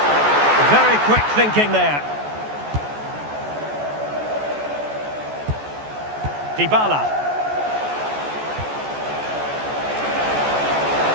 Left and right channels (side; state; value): left; late; 14 ms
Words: Very quick thinking there. Dybala.